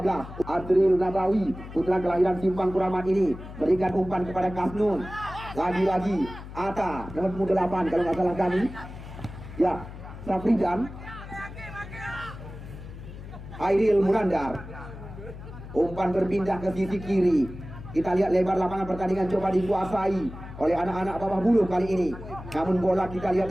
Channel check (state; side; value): noise; left; hum, 13 dB below the sound